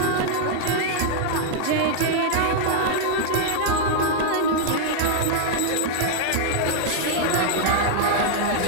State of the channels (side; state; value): both; different; correlation -0.01